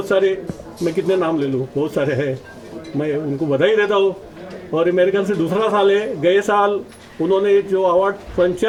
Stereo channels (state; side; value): identical; both; correlation 1.00